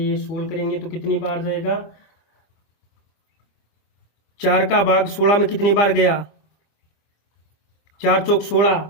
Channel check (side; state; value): right; late; 25 ms